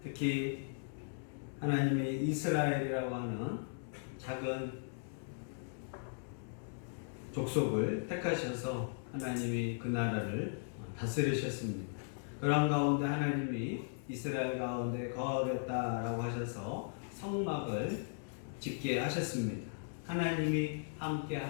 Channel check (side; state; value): right; silent; digital silence